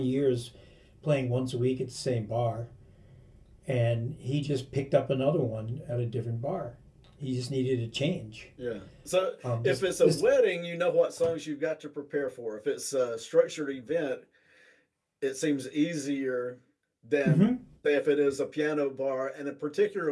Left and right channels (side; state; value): both; identical; correlation 1.00